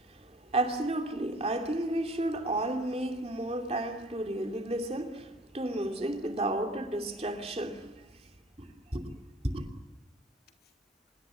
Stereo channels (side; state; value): both; normal; correlation 0.50